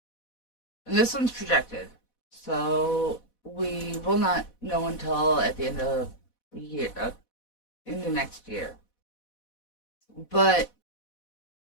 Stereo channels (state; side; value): late; right; 4.1 ms